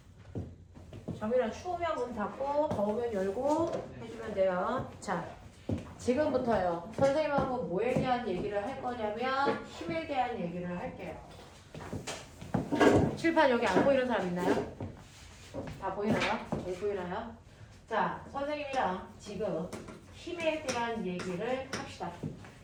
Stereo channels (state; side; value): identical; both; correlation 1.00